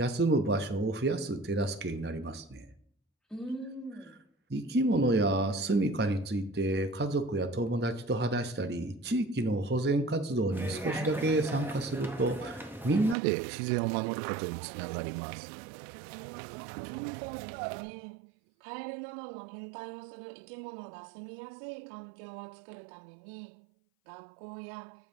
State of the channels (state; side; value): drops out; left; at 13.2 s